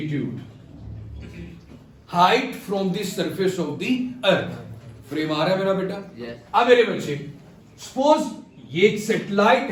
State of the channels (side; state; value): both; identical; correlation 1.00